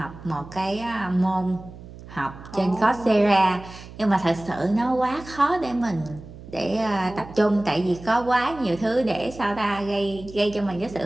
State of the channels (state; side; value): noise; right; hum, 16 dB below the sound